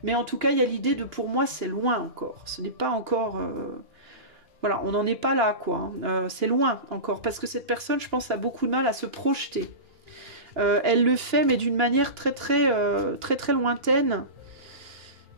Mais en tout cas, il y a l'idée de, pour moi, c'est loin encore. Ce n'est pas encore... Voilà, on n'en est pas là, quoi. C'est loin encore. Parce que cette personne, je pense, a beaucoup de mal à se projeter. Elle le fait, mais d'une manière très lointaine.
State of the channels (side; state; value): left; late; 2.9 ms